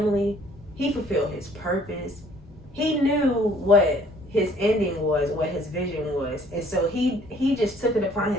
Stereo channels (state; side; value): noise; left; rumble, 23 dB below the sound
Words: He fulfilled his purpose. He knew what his ending was, what his vision was, and so he just took it upon